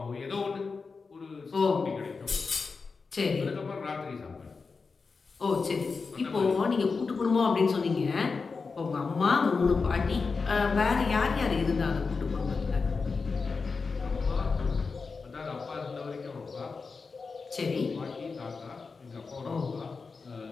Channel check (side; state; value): right; quieter; 4.6 dB